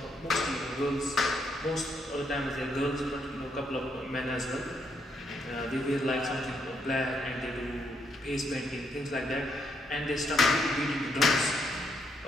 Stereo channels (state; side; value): normal; both; correlation 0.75